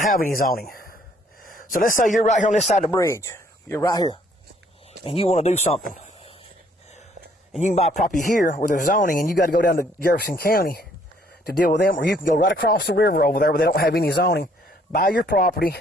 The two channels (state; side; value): normal; both; correlation 0.64